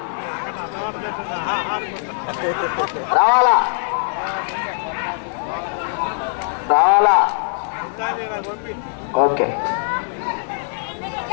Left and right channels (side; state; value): right; silent; 65 dB below the other